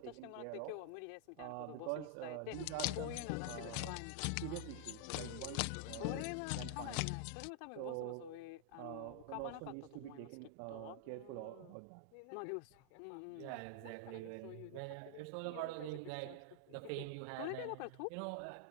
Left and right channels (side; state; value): both; different; correlation 0.00